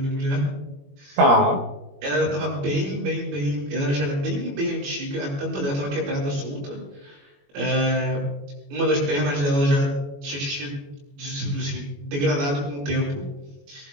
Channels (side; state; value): left; late; 21 ms